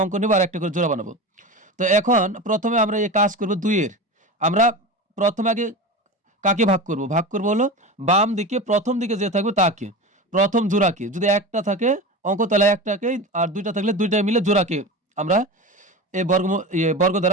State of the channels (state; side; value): normal; both; correlation 0.27